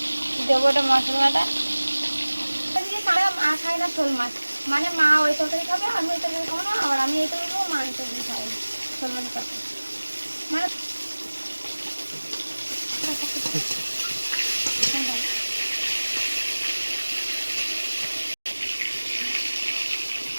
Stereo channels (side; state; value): both; inverted; correlation -1.00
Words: দেবো, এটা মশলা বাটা। মা খায় না শোল মাছ, মানে মা ওই তরকারি খাবে, আমি ওই তরকারি খাবো না, আবার আমি এই তরকারি খাবো, মা এই তরকারি খাবে শোল মাছের তরকারি। মানে